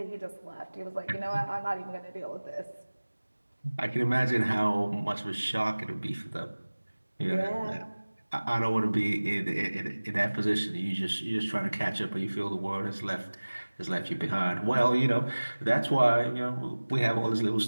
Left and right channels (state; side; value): inverted; both; correlation -1.00